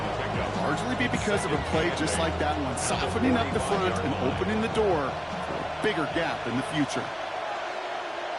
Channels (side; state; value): both; identical; correlation 1.00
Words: largely be because of a play just like that one, softening up the front and opening the door for a bigger gap in the future.